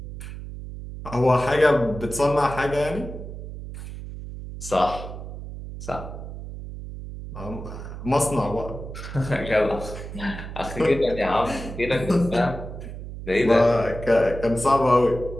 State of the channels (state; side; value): noise; right; hum, 10 dB below the sound